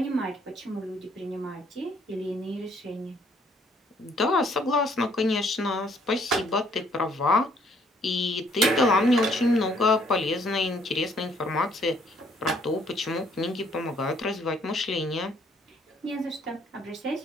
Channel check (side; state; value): both; normal; correlation 0.65